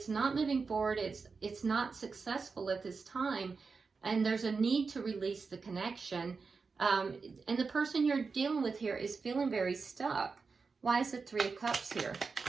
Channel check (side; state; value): left; quieter; 4.8 dB